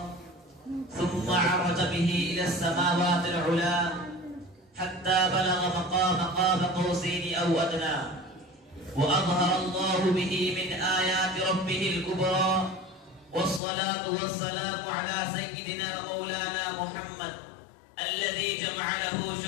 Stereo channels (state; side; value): drops out; right; at 13.6 s